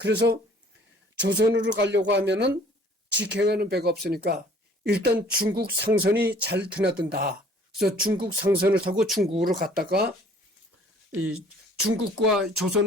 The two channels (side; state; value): both; normal; correlation 0.55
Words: 조선으로 가려고 하면은 직행하는 배가 없으니까 일단 중국 상선이 잘 드나든다. 그래서 중국 상선을 타고 중국으로 갔다가 이 중국과